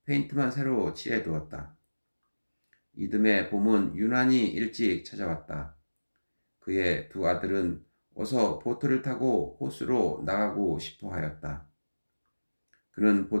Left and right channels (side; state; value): both; inverted; correlation -1.00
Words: 페인트만 새로 칠해 두었다. 이듬해 봄은 유난히 일찍 찾아왔다. 그의 두 아들은 어서 보트를 타고 호수로 나가고 싶어 하였다. 그는